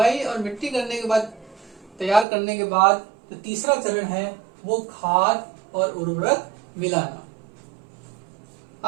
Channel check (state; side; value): drops out; left; at 2.2 s